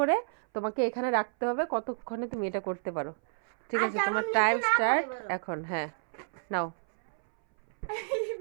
তোমাকে এখানে রাখতে হবে। কতক্ষণে তুমি এটা করতে পারো? ঠিক আছে, তোমার টাইম স্টার্ট এখন। হ্যাঁ, নাও।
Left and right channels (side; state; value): left; silent; 58 dB below the other